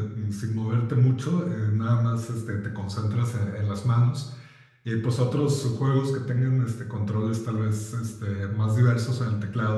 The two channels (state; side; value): identical; both; correlation 1.00